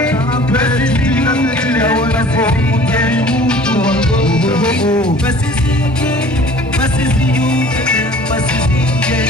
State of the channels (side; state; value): both; normal; correlation 0.48